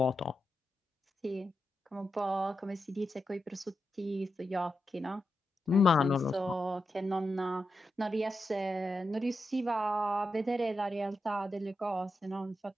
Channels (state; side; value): normal; both; correlation 0.87